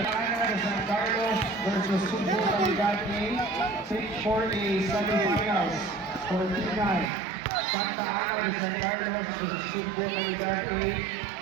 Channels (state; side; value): drops out; left; at 7.1 s